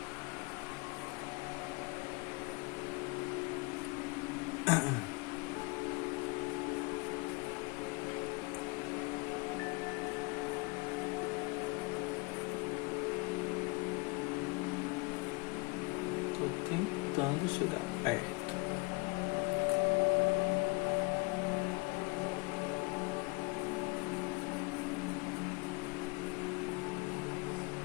Tô tentando chegar perto.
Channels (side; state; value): right; quieter; 27.9 dB